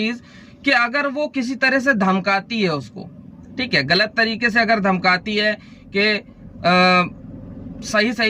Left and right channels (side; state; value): both; identical; correlation 1.00